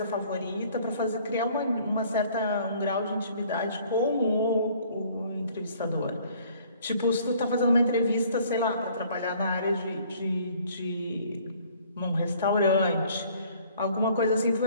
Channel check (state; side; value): inverted; both; correlation -0.57